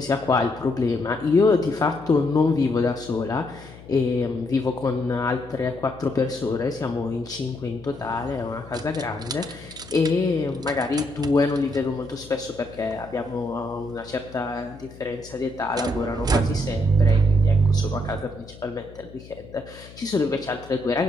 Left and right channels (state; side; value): noise; left; hum, 19 dB below the sound